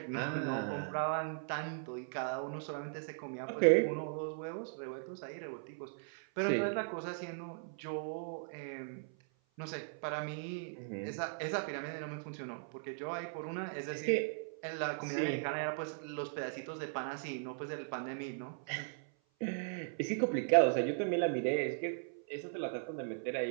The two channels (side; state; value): left; silent; 52 dB below the other